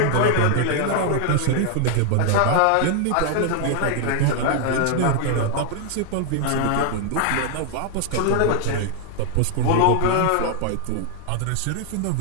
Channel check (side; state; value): both; different; correlation 0.00